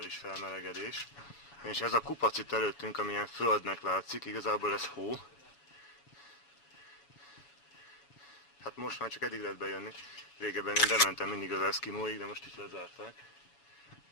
felmelegedés. És ez a kupac itt előttünk, amilyen földnek látszik, igazából ez hó. Hát most már csak eddig lehet bejönni. Régebben én bementem mindig az eszkimóig, de most is lezárták.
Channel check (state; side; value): late; right; 7.1 ms